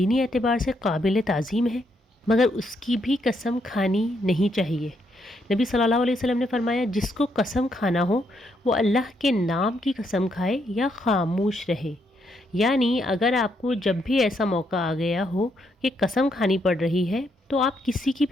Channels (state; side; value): normal; both; correlation 0.76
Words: اعتبار سے قابل تعظیم ہے، مگر اس کی بھی قسم کھانی نہیں چاہیے۔ نبی صلی اللہ علیہ وسلم نے فرمایا جس کو قسم کھانا ہو وہ اللہ کے نام کی قسم کھائے یا خاموش رہے۔ یعنی اگر آپ کو جب بھی ایسا موقع آ گیا ہو کہ قسم کھانی پڑ رہی ہے تو آپ کسی کی